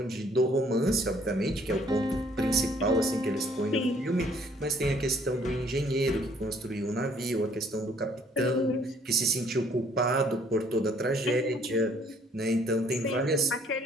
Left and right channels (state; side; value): normal; both; correlation 0.62